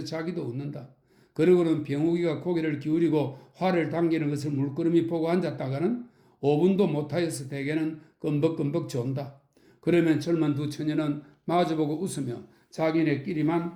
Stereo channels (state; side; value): identical; both; correlation 1.00